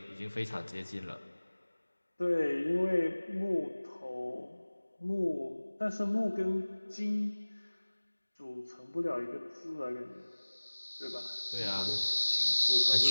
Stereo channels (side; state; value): both; inverted; correlation -1.00